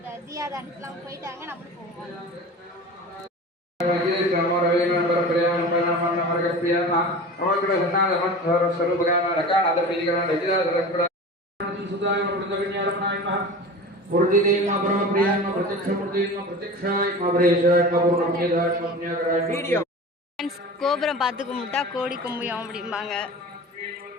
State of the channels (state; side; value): normal; both; correlation 0.35